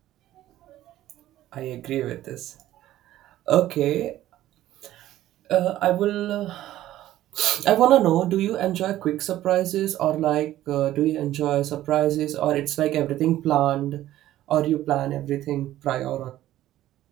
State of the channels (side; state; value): left; quieter; 14.0 dB